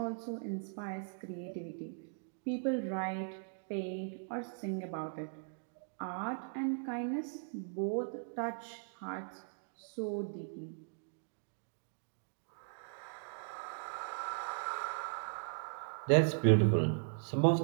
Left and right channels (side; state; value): left; silent; digital silence